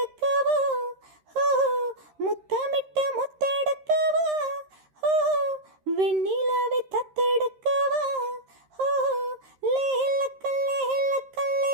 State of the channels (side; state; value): left; late; 13 ms